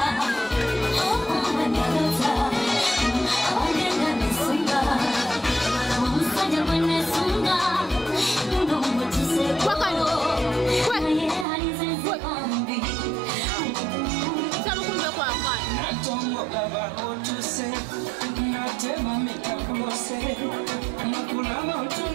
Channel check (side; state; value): left; drops out; at 11.5 s